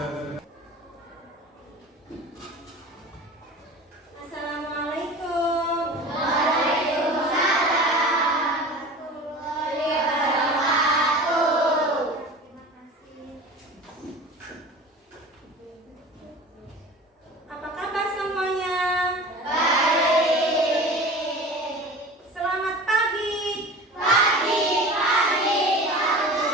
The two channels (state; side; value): normal; both; correlation 0.37